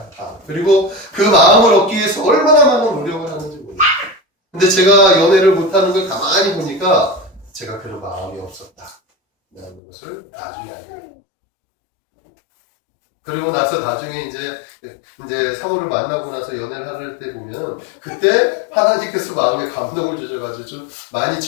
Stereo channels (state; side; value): drops out; right; at 9.8 s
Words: 그리고 그 마음을 얻기 위해서 얼마나 많은 노력을 하는지 몰라요. 근데 제가 연애를 못하는 걸 가만히 보니까 제가 그런 마음이 없었다. 라는 것을 나중에 알게 돼요. 그리고 나서 나중에 이제 상호를 만나고 나서 연애를 할 때 보면 그때 하나님께서 마음에 감동을 주셔가지고 좀 많이